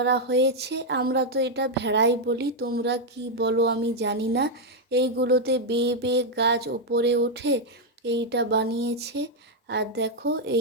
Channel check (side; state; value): both; normal; correlation 0.00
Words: হয়েছে। আমরা তো এটা ভেড়াই বলি, তোমরা কি বলো আমি জানি না। এইগুলোতে বেয়ে বেয়ে গাছ ওপরে ওঠে, এইটা বানিয়েছে। আর দেখো